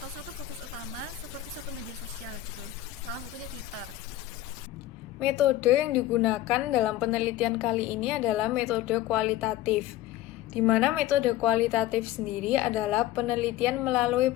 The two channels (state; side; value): quieter; right; 14.3 dB